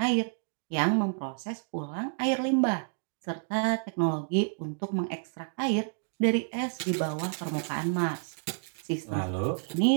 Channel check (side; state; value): left; silent; 58 dB below the other